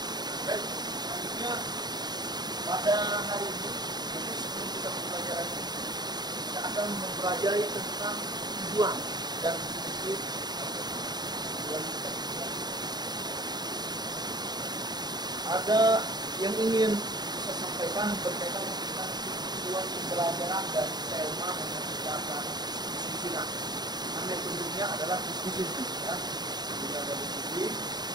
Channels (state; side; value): late; left; 0.20 ms